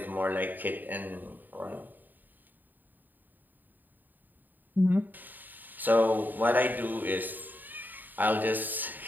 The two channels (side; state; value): left; late; 0.089 ms